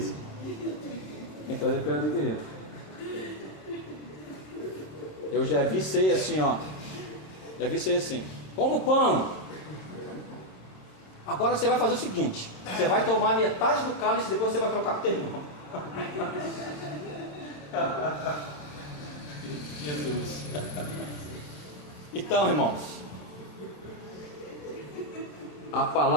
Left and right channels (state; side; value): late; right; 26 ms